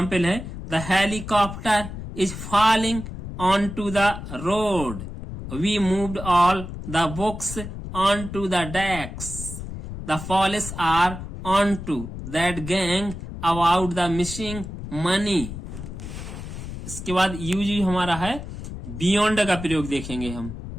है, the helicopter is falling on to the road, we moved all the books on to the desk, the police are on to that gang about the missing money. इसके बाद use हमारा है beyond का प्रयोग देखेंगे हम।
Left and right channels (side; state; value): left; noise; rumble, 9 dB below the sound